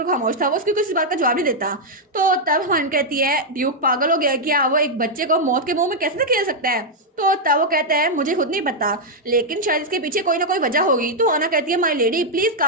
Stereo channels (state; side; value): normal; both; correlation -0.02